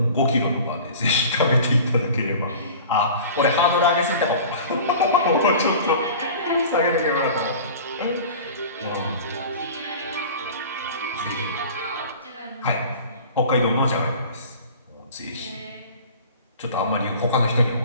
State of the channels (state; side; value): inverted; both; correlation -0.40